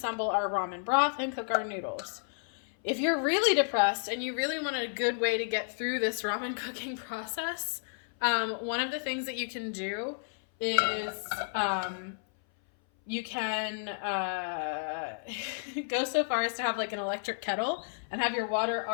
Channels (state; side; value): silent; right; 57 dB below the other